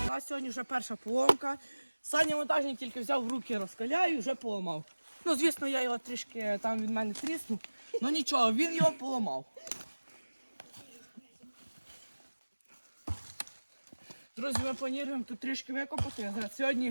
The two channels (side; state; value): both; inverted; correlation -1.00